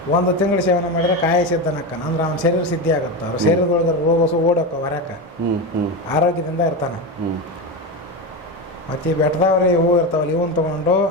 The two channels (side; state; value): both; normal; correlation 0.18